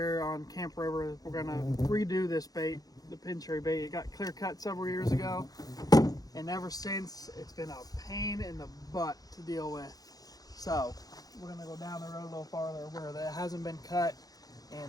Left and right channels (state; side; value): late; right; 0.18 ms